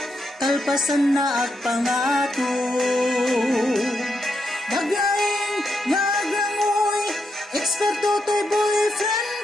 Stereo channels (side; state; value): both; normal; correlation 0.82